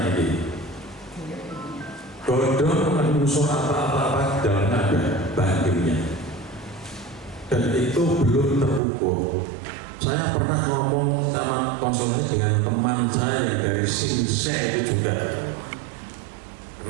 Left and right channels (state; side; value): drops out; left; at 8.8 s